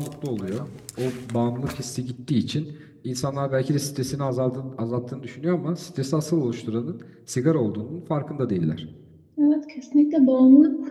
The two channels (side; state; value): both; identical; correlation 1.00